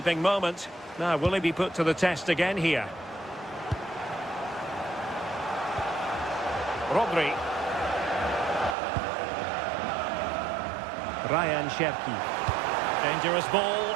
moment. Now, will he be put to the test again here? Rodri. Ryan Cherki. Dangerous ball.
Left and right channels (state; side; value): drops out; left; at 8.8 s